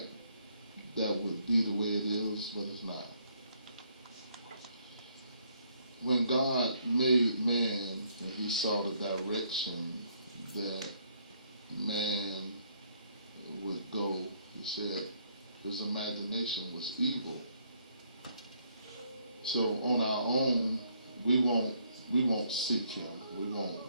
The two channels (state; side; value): inverted; both; correlation -0.69